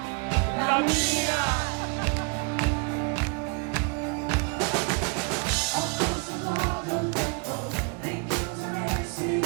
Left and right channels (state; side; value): quieter; left; 33.6 dB